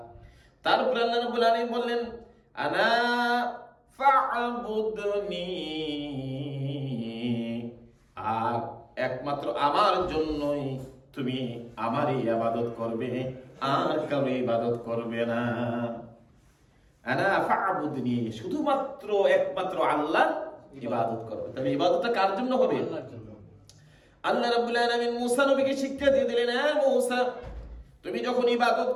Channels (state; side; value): identical; both; correlation 1.00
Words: তারপর আল্লাহ রাব্বুল আলামিন বললেন, আনা ফা'বুদনি, আর একমাত্র আমার জন্যই তুমি আমারই ইবাদত করবে, আর কারো ইবাদত করবে না। আনা ফা'বুদনি, শুধুমাত্র একমাত্র আল্লাহর ইবাদত করবে। তবে ইবাদতটা কার জন্য হবে? আল্লাহ রাব্বুল আলামিন মূসা নবীকে শিক্ষা দিয়ে দিলেন, হ্যাঁ মূসা, তুমি যখন ইবাদত